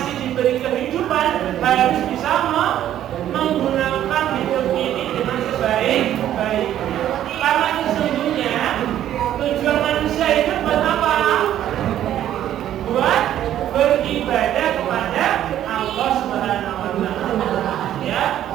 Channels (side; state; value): left; quieter; 11.6 dB